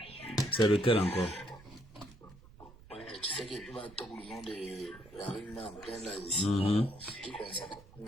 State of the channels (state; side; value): noise; right; rumble, 21 dB below the sound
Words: C'est lequel encore? Ouais, tu sais qu'il va attendre le nom de la rue en plein là ici. Qui concerne,